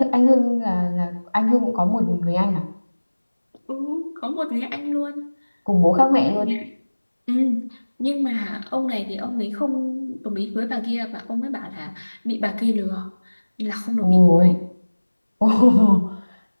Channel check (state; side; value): inverted; both; correlation -1.00